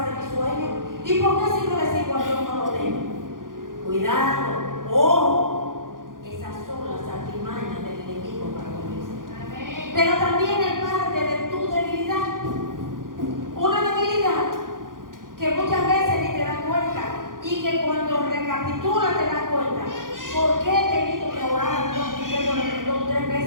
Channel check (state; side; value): late; left; 0.90 ms